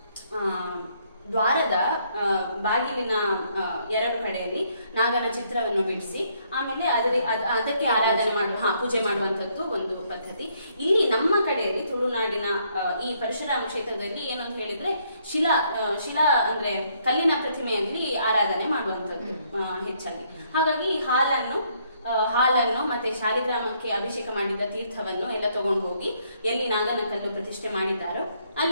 ದ್ವಾರದ ಬಾಗಿಲಿನ ಎರಡು ಕಡೆಯಲ್ಲಿ ನಾಗನ ಚಿತ್ರವನ್ನು ಬಿಡಿಸಿ ಆಮೇಲೆ ಅದಕ್ಕೆ ಆರಾಧನೆ ಪೂಜೆ ಮಾಡುವಂತದ್ದು ಒಂದು ಪದ್ಧತಿ. ಇಲ್ಲಿ ನಮ್ಮ ಕಡೆಯಲ್ಲಿ ತುಳುನಾಡಿನ ಈ ಪರಶುರಾಮ ಕ್ಷೇತ್ರದಲ್ಲಿ ಏನಂತ ಹೇಳಿದ್ರೆ, ಶಿಲಾ ಅಂದ್ರೆ ಕಲ್ಲಿನ ಪ್ರತಿಮೆಯಲ್ಲಿ ಆರಾಧನೆ ಮಾಡುವಂತದ್ದು ಹೆಚ್ಚಾಗಿ. ಹಾಗಾಗಿ ಹಾಲನ್ನು ಮತ್ತೆ ಶಾಲಿಗ್ರಾಮಕ್ಕೆ ಅಭಿಷೇಕ ಮಾಡಿದ ತೀರ್ಥವನ್ನು ಎಲ್ಲ ತಗೊಂಡು ಹೋಗಿ ಎಲ್ಲಿ ನಾಗನ ಕಲ್ಲು ಪ್ರತಿಷ್ಠೆ ಮಾಡಿದ್ದಾರೋ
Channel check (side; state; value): both; inverted; correlation -0.70